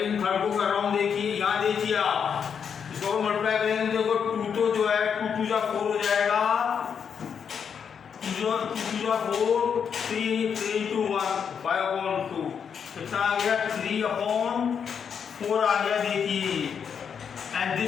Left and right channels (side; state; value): right; quieter; 7.1 dB